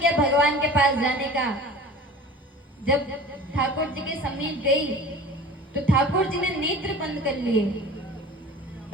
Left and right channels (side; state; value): both; normal; correlation 0.40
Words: भगवान के पास जाने का। जब ठाकुर जी के समीप गई तो ठाकुर जी ने नेत्र बंद कर लिए।